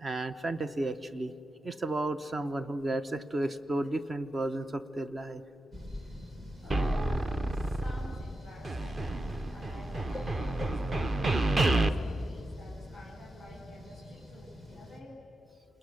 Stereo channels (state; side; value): normal; both; correlation 0.90